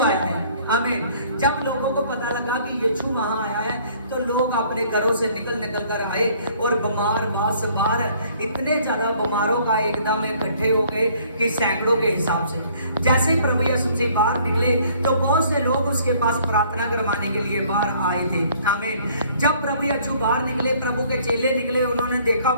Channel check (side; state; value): both; inverted; correlation -0.58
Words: आया है। हमें जब लोगों को पता लगा कि यीशु वहां आया है तो लोग अपने घरों से निकल कर आए, और बीमार बार इतने ज्यादा बीमारों का एकदम इकट्ठे हो गए कि सैकड़ों के हिसाब से। जैसे ही प्रभु यीशु से बाहर निकले तो बहुत से लोग उसके पास प्रार्थना करवाने के लिए बाहर आए थे। आमीन। जब प्रभु यीशु बाहर निकले, प्रभु के चेले निकले, उन्होंने देखा